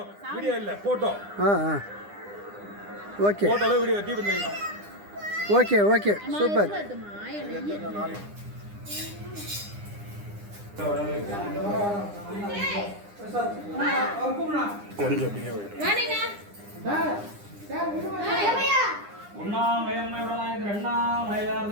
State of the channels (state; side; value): late; left; 9.9 ms